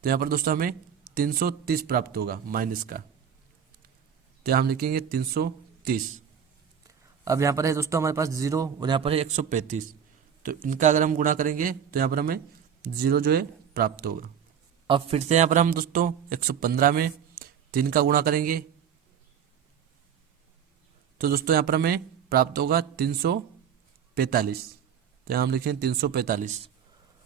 तो यहाँ पर दोस्तों हमें 330 प्राप्त होगा माइनस का। तो हम लिखेंगे 330। अब यहाँ पर है दोस्तों हमारे पास 0 और यहाँ पर है 135, तो इनका अगर हम गुणा करेंगे तो यहाँ पर हमें 0 जो है प्राप्त होगा। अब फिर से यहाँ पर हम दोस्तों 115 में 3 का गुणा करेंगे, तो दोस्तों यहाँ पर हमें प्राप्त होगा 345। तो यहाँ हम लिखेंगे 345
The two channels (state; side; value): quieter; left; 8.2 dB